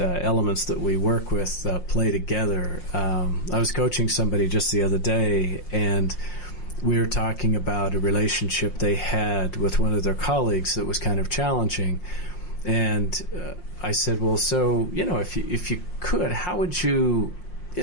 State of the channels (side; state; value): right; late; 5.6 ms